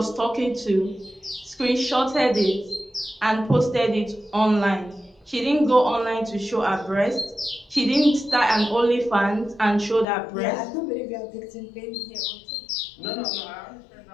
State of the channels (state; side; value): drops out; right; at 10.1 s